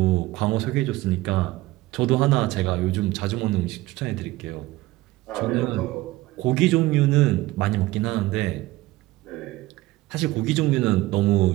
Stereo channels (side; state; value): left; quieter; 18.4 dB